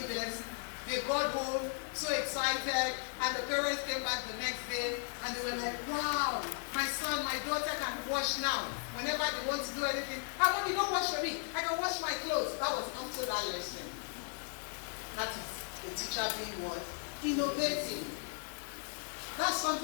them. They got home so excited, and the parents came back the next day and they were like, wow, my son, my daughter can wash now. Whenever they want to do anything, mommy, don't wash for me. I can wash my clothes. That was after that lesson. That is a teacher being what? Innovative. That's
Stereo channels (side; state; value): right; silent; 54 dB below the other